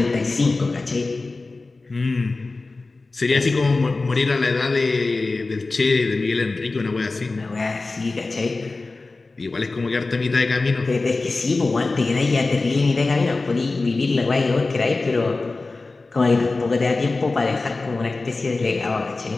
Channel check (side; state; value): right; quieter; 3.5 dB